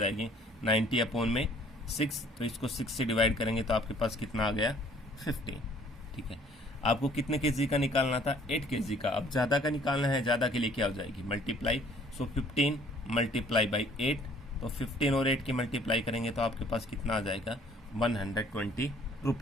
90 अपॉन में 6, तो इसको 6 से डिवाइड करेंगे तो आपके पास कितना आ गया, 50, ठीक है। आपको कितने kg का निकालना था, 8 kg का। अब ज़्यादा का निकालना है, ज़्यादा के लिए क्या हो जाएगी, मल्टीप्लाई, सो 15 मल्टीप्लाई बाई 8, तो 15 और 8 की मल्टीप्लाई करेंगे तो आपके पास कितना आ जाएगा, 120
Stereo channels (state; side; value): normal; both; correlation 0.57